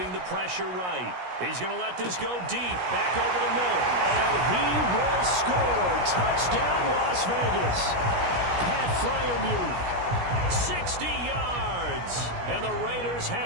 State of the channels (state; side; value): late; left; 17 ms